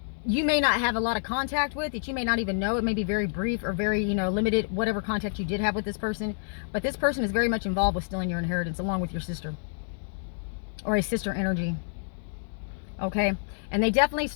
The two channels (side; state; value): right; silent; digital silence